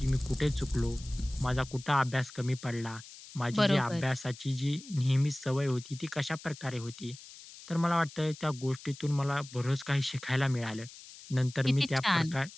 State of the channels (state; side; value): noise; left; hiss, 17 dB below the sound